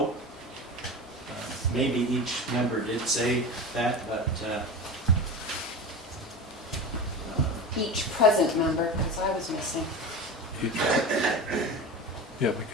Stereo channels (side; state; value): both; normal; correlation 0.28